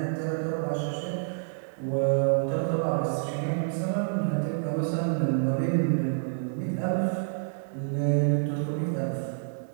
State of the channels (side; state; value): left; silent; digital silence